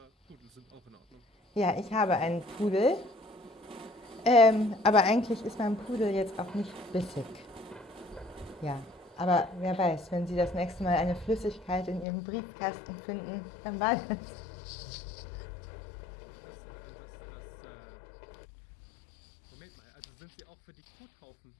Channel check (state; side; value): drops out; right; at 12.1 s